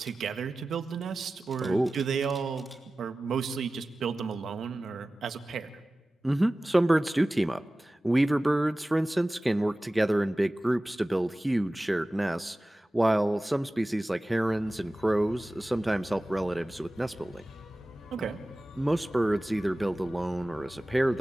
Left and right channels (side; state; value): both; normal; correlation 0.97